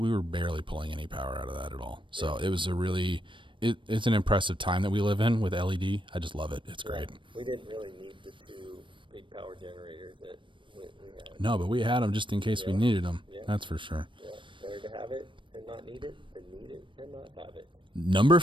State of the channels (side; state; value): left; late; 0.24 ms